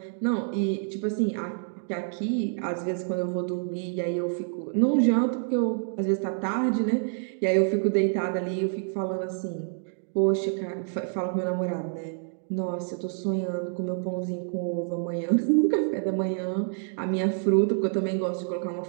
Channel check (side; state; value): left; silent; 60 dB below the other